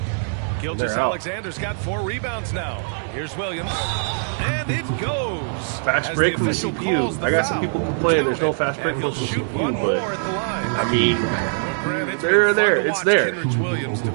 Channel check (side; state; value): left; silent; digital silence